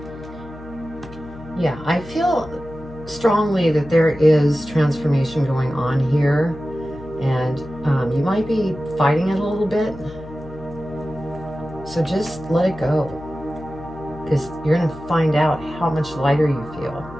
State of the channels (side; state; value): left; noise; hum, 16 dB below the sound